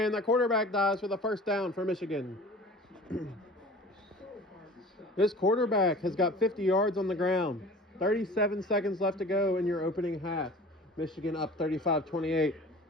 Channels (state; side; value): normal; both; correlation 0.42